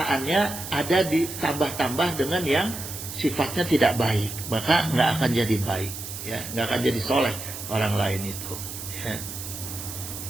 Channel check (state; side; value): noise; right; hiss, 9 dB below the sound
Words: ada ditambah-tambah dengan yang sifatnya tidak baik, maka nggak akan jadi baik, ya, nggak akan jadi soleh orang lain itu, ya.